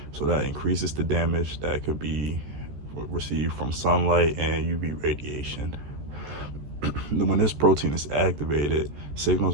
So that increases the damage that could be received from sunlight and UV radiation. When this protein is activated,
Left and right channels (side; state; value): left; late; 14 ms